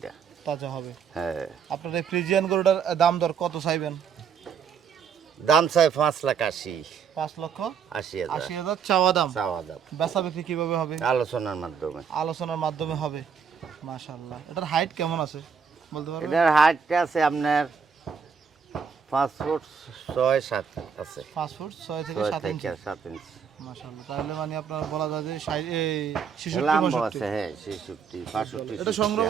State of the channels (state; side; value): quieter; left; 6.5 dB